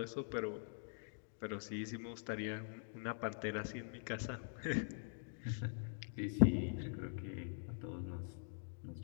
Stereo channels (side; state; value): right; silent; digital silence